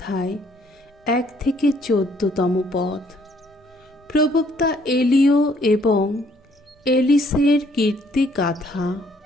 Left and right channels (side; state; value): both; normal; correlation 0.64